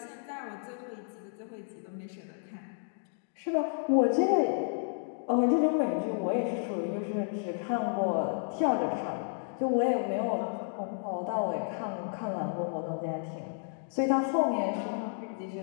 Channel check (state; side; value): silent; right; digital silence